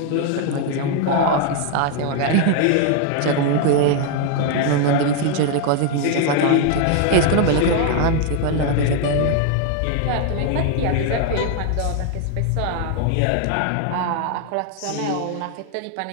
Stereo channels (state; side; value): different; both; correlation 0.00